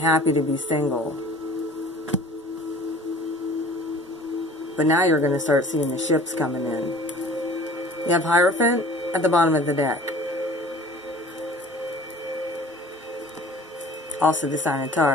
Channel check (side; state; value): both; normal; correlation 0.46